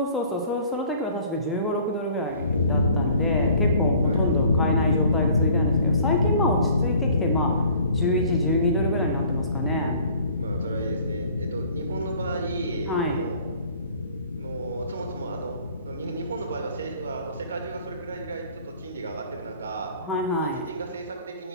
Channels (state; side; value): inverted; both; correlation -0.52